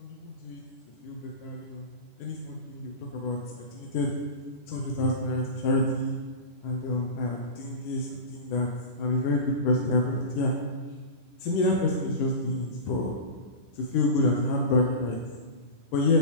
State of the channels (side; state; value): right; late; 10 ms